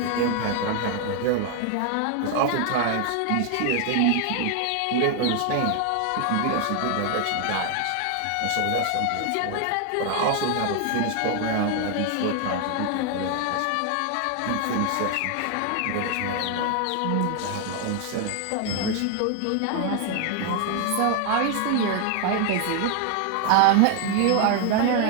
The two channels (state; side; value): different; both; correlation 0.00